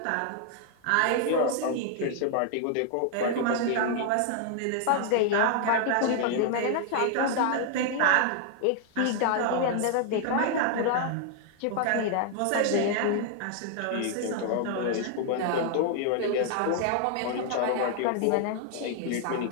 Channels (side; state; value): both; different; correlation 0.00